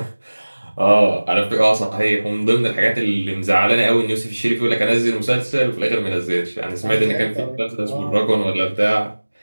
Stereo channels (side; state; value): both; inverted; correlation -1.00